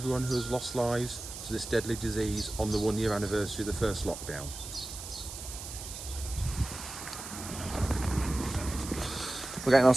who has lost lives to this deadly disease on the 1-year anniversary of the first lockdown. We're getting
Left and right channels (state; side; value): noise; right; hiss, 10 dB below the sound